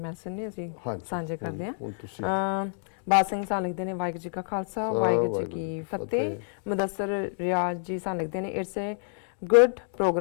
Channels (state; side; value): silent; right; digital silence